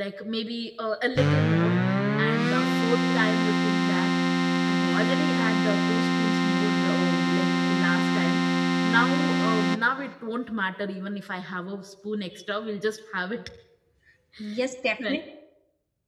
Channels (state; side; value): identical; both; correlation 1.00